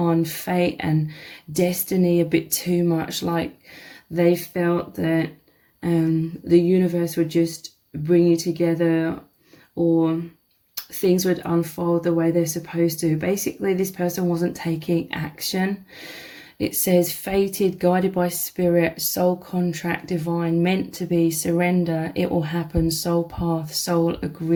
fate and destiny a bit too much. Like they felt that the universe would just bring you together, or things would unfold the way they're supposed to. Basically, this person wasn't taking action. It says fated, guided by spirit, soul contract, divine, meant to be, surrender, it will happen, soul path, soul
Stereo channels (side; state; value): both; identical; correlation 1.00